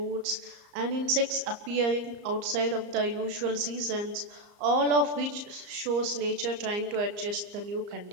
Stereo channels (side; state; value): left; late; 34 ms